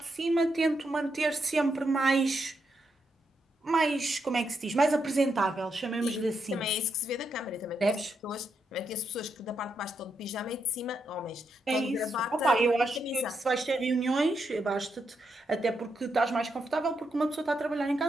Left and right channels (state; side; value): normal; both; correlation 0.81